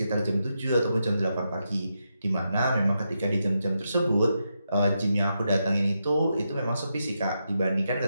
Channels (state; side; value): inverted; both; correlation -0.84